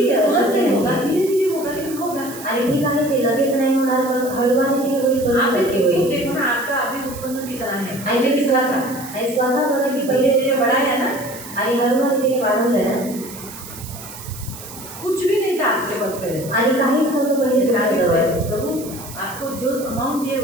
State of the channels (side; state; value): right; noise; hiss, 14 dB below the sound